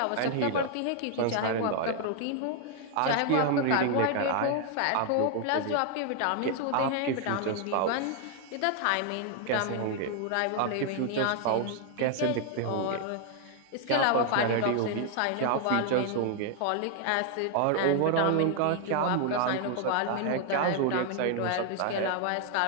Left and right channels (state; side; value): different; both; correlation 0.00